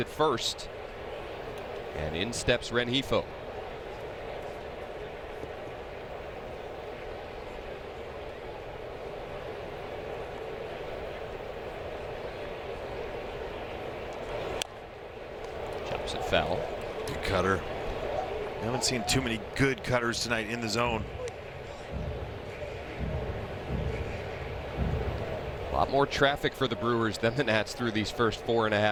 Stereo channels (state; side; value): identical; both; correlation 1.00